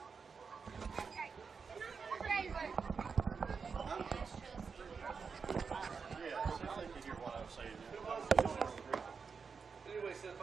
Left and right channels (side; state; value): left; quieter; 5.5 dB